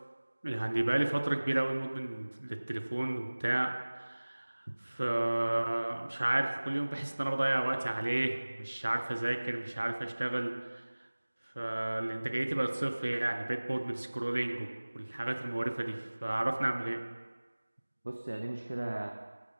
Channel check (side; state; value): both; inverted; correlation -1.00